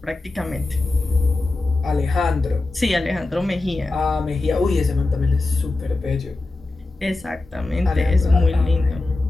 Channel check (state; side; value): quieter; right; 3.1 dB